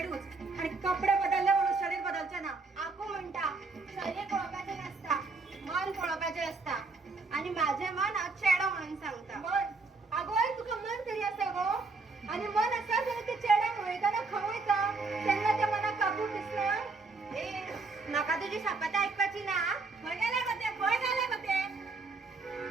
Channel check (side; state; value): left; quieter; 3.9 dB